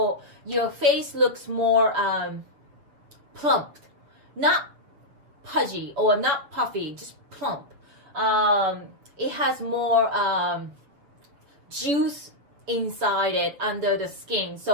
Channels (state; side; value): late; left; 7.4 ms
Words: your face looks more plump, not pudgy or not puffy, just plump. It has more juice inside it under the skin,